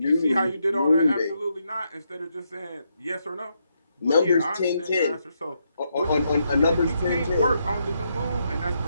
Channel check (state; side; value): inverted; both; correlation -0.79